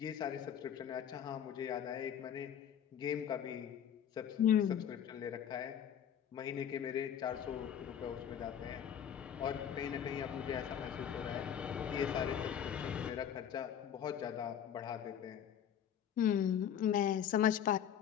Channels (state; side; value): quieter; right; 9.1 dB